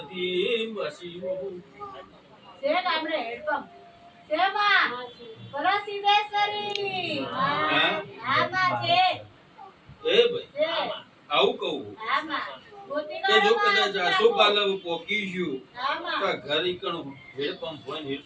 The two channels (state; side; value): identical; both; correlation 1.00